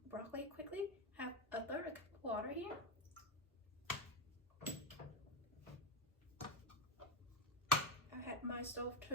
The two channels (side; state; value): both; normal; correlation 0.10